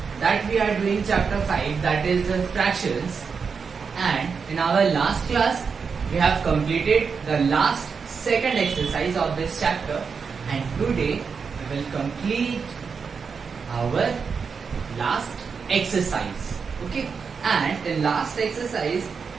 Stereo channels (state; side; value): quieter; left; 5.7 dB